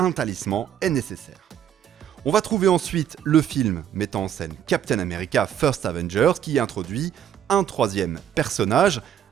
talisman est nécessaire. On va trouver ensuite le film mettant en scène Captain America First Avengers qui introduit un troisième personnage,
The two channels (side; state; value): left; quieter; 9.8 dB